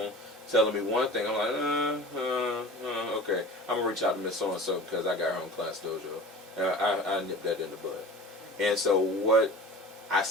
telling me one thing, I'm like, okay, I'm gonna reach out to Miss So and So because I got her on Class Dojo. I nipped that in the bud. And so I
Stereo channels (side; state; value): both; normal; correlation 0.38